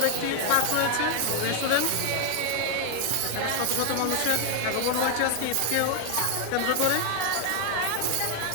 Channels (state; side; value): different; both; correlation 0.00